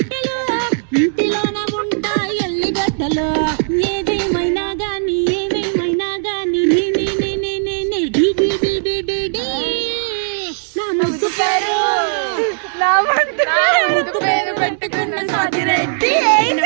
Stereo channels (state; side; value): silent; left; digital silence